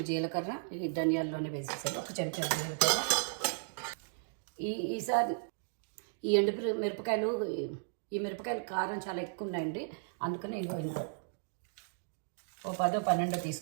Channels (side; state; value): left; silent; digital silence